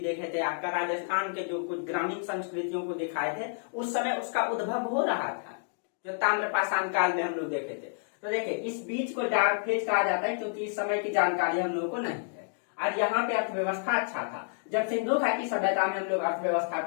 देखे थे, आपका राजस्थान के जो कुछ ग्रामीण संस्कृतियों को दिखाए थे, उस समय उसका उद्भव हो रहा था, जो ताम्रपाषाण काल में हम लोग देखे थे। तो देखिए, इस बीच को डार्क फेज कहा जाता है क्योंकि इस समय की जानकारी हम लोगों को नहीं है। और यहाँ पे अर्थव्यवस्था अच्छा था। जब सिंधु घाटी सभ्यता में हम लोग अर्थव्यवस्था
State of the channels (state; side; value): silent; right; digital silence